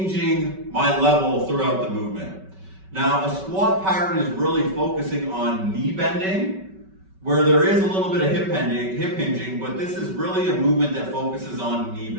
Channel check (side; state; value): left; late; 5.3 ms